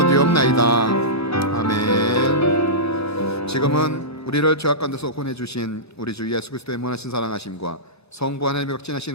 아멘. 지금은 우리를 죄악 가운데서 구원해 주신 우리 주 예수 그리스도의 무한하신 사랑하심과 성부 하나님의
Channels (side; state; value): both; normal; correlation -0.16